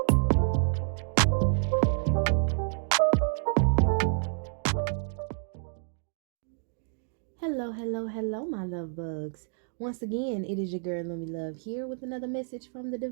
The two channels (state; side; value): silent; left; digital silence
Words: Hello, hello, hello, my love bugs. Once again, it is your girl, Lumi Love, here with another message from the